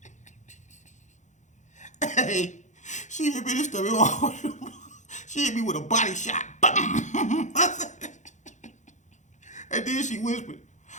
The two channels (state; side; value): late; right; 0.35 ms